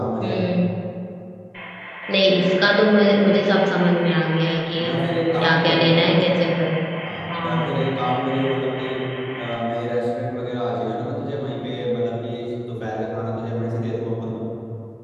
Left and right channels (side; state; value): both; identical; correlation 1.00